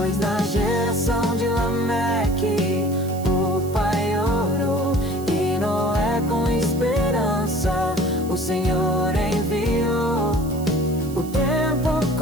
na geração de Lameque o pai orou, e Noé com esperança o Senhor enviou. O tempo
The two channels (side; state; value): right; noise; hiss, 18 dB below the sound